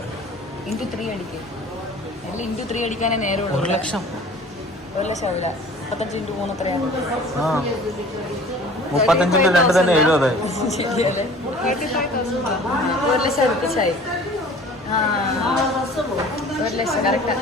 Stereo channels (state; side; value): normal; both; correlation 0.46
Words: ഇൻറ്റു 3 അടിക്കേ. അല്ല ഇൻറ്റു 3 അടിക്കാനേ നേരമുള്ളൂ. 1 ലക്ഷം. 1 ലക്ഷം ആവില്ല. 35 ഇൻറ്റു 3 എത്രയാണ്? 35 × 2 തന്നെ 70. ശരിയല്ലേ? 1 ലക്ഷം അടുപ്പിച്ചായി. 1 ലക്ഷം കറക്റ്റാ.